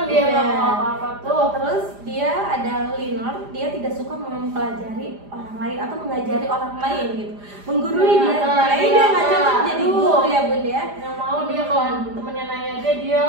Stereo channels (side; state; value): left; late; 4.9 ms